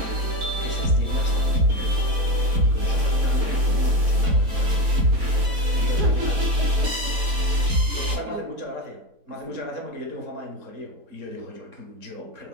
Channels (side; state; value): left; late; 4.2 ms